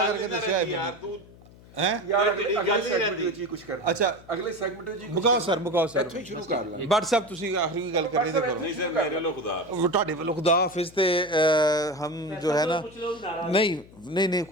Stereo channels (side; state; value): left; noise; hum, 22 dB below the sound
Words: करके दस्या है यार तू यार अगले सेगमेंट ਵਿੱਚ ਹੀ ਕੁਝ ਕਰਨਾ। अच्छा ਅਗਲੇ ਸੈਗਮੈਂਟ ਵਿੱਚ ਮੁਕਾਓ ਸਰ ਇੱਥੋਂ ਹੀ ਸ਼ੁਰੂ ਕਰ ਲਾਂ। ਬਟ ਸਾਹਿਬ ਤੁਸੀਂ ਆਖਰੀ ਗੱਲ ਕਰਨੀ ਤੇ ਕਰੋ। नहीं सर मेरे लो खुदा वो ਤੁਹਾਡੇ ਵੱਲੋਂ ਖੁਦਾ ਹਾਫਿਜ਼ ਤੇ हम जो है ना नहीं